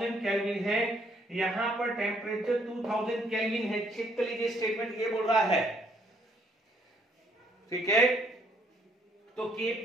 केल्विन है, यहां पर टेम्परेचर 2000 केल्विन है। चेक कर लीजिए स्टेटमेंट ये बोल रहा है, ठीक है। तो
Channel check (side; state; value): both; normal; correlation 0.67